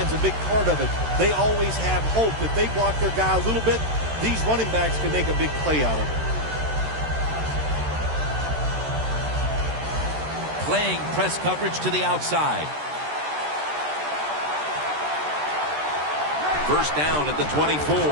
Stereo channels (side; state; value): left; late; 13 ms